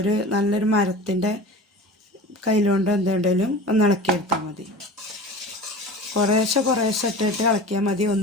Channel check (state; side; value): normal; both; correlation 0.36